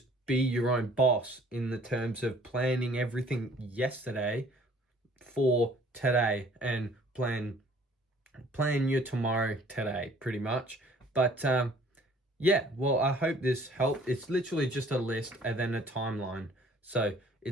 be your own boss in the terms of planning everything yesterday for today, and plan your tomorrow today, pretty much. But yeah, well, I hope this helped. It's literally just a list and then a timeline. So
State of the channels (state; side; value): normal; both; correlation 0.55